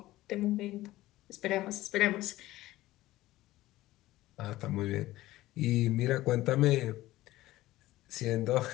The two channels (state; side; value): quieter; right; 16.6 dB